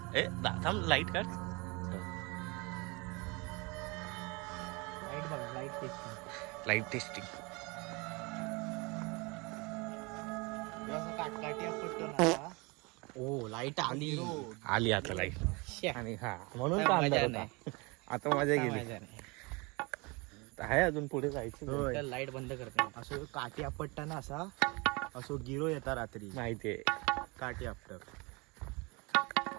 ए दादा लाईट काढ. लाईट बघा, लाईट टेस्टिंग लाईट टेस्टिंग. काटकाटी पटकन आला. ओ लाईट आली आली आता लाईट. आणि हा म्हणून का अंधार होता. आता मजा गेली. आहे अजून पुढे जायचं. लाईट बंद करते. असं काठी आपटताना असा असं गिरो येता रात्री. माहितीये काठी आपट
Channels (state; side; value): quieter; left; 27.6 dB